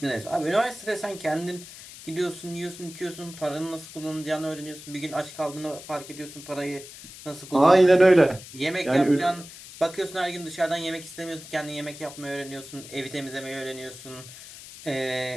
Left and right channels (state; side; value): noise; left; hiss, 15 dB below the sound